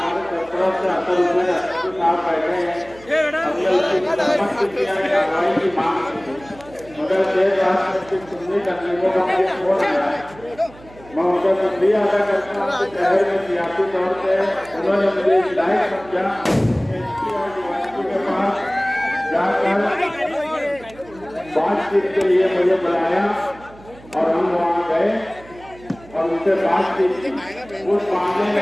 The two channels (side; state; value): right; noise; hum, 22 dB below the sound